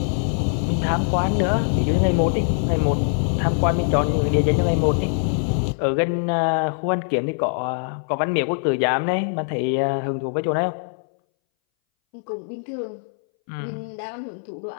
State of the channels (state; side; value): silent; right; 62 dB below the other